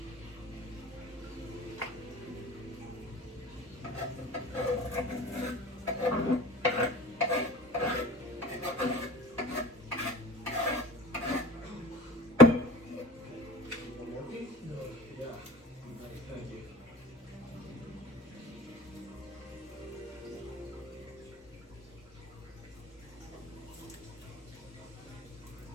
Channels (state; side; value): normal; both; correlation 0.44